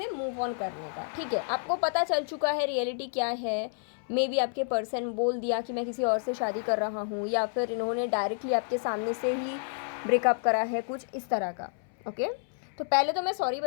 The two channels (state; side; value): silent; right; 58 dB below the other